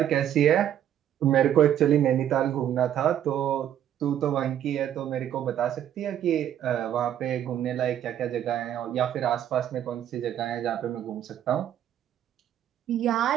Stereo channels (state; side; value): quieter; left; 10.6 dB